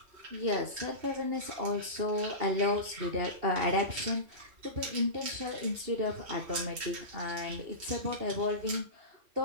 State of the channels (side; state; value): left; late; 3.2 ms